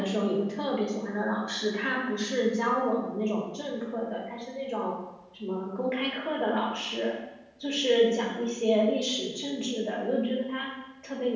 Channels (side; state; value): both; identical; correlation 1.00